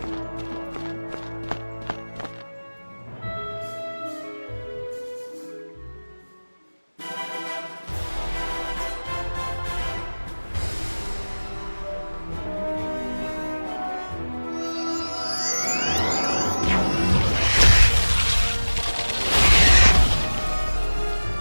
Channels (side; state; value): both; inverted; correlation -1.00